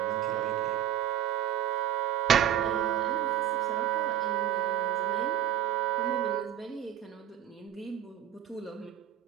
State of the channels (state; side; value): quieter; left; 10.7 dB